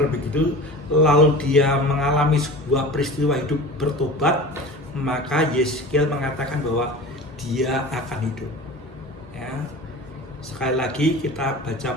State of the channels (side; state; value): both; normal; correlation 0.36